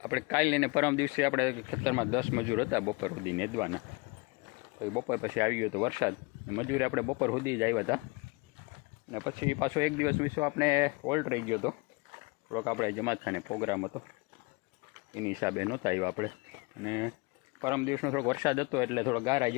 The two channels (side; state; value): right; quieter; 27.7 dB